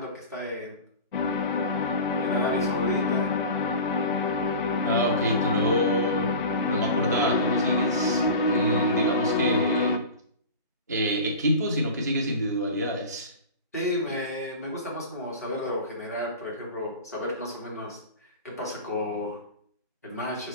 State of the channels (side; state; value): both; inverted; correlation -0.33